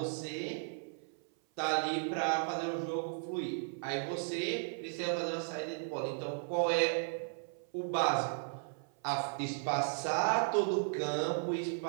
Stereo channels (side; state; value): left; silent; 54 dB below the other